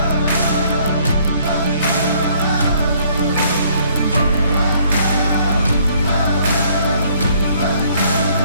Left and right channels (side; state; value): both; inverted; correlation -0.63